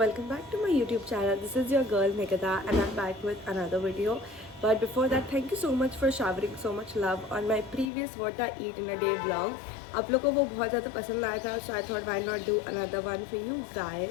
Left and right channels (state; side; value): drops out; right; at 7.9 s